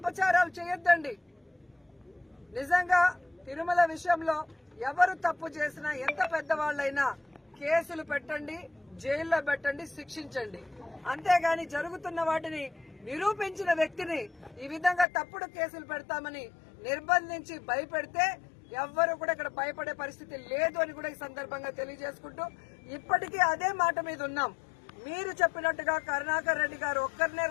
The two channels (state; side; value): drops out; right; at 15.1 s